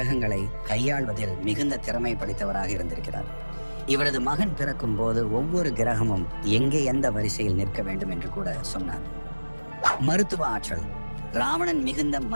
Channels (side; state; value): both; inverted; correlation -1.00